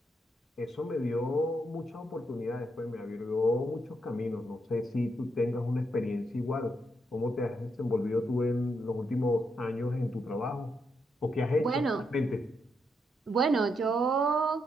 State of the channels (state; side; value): normal; both; correlation 0.80